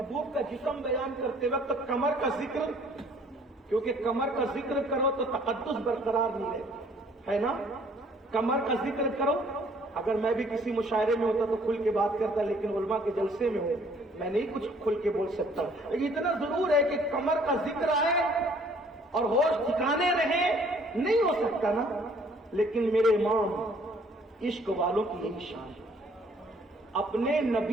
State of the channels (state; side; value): normal; both; correlation 0.59